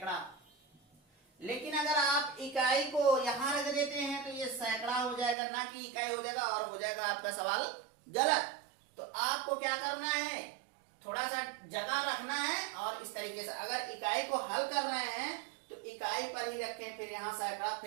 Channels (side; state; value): left; drops out; at 5.4 s